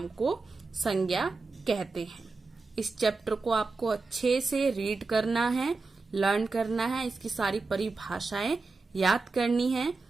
को संज्ञा कहते हैं। इस चैप्टर को आपको अच्छे से रीड करना है, लर्न करना है, इसकी सारी परिभाषाएं याद करनी है।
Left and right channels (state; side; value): quieter; left; 3.9 dB